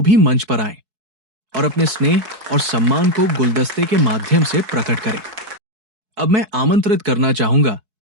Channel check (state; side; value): late; left; 4.6 ms